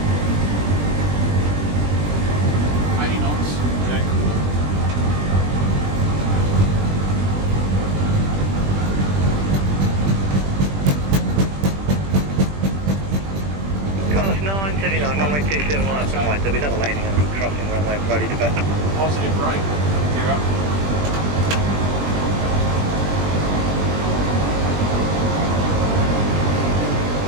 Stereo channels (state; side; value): late; left; 20 ms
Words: knots. Check. Qantas 979, runway 27, line up and white. There'll be another landing and crossing runway Brody to back. Positive brake. Gear up.